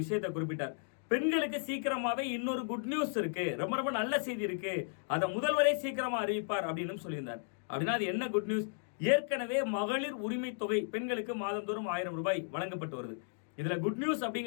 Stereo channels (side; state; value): right; silent; digital silence